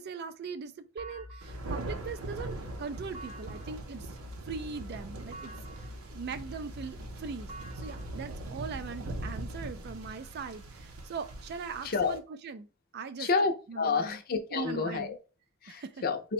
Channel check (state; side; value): normal; both; correlation -0.07